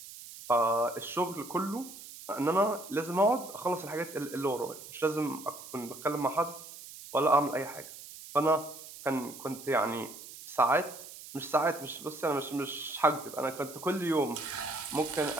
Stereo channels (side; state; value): right; noise; hiss, 14 dB below the sound